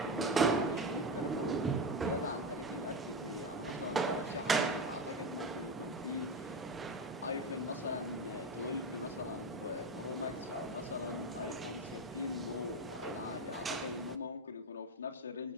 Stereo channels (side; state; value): both; normal; correlation 0.18